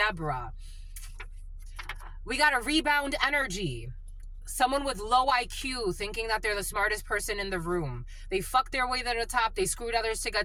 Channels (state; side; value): identical; both; correlation 1.00